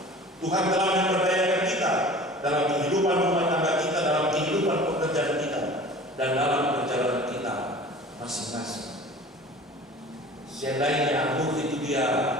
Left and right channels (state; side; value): normal; both; correlation 0.42